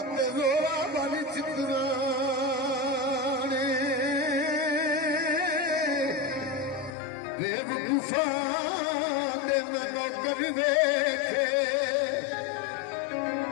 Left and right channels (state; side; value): drops out; right; at 6.9 s